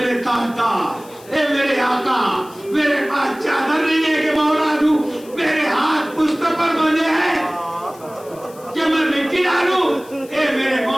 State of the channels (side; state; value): left; noise; hiss, 23 dB below the sound